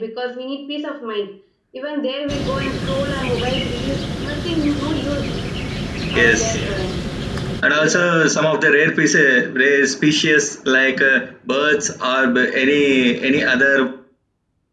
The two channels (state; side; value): identical; both; correlation 1.00